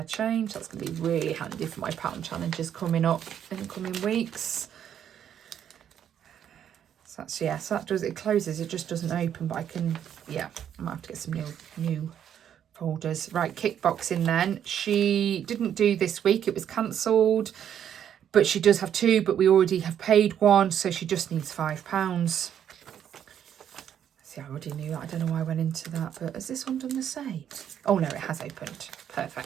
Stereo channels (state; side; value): quieter; left; 9.4 dB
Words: change. That's going to be really handy for my pound challenges coming up in the coming weeks. So that's, yeah, so that does, it closes, it just doesn't open, but I can, yeah, I might have to get some new folders. Right, kickboxing then. She didn't do this week, it was cancelled, but she does have 2, but we already have paid 1, so she just needs £5. See, I already knew that. I don't know why I went into that, but has this one done the same? Oh no, it has opened.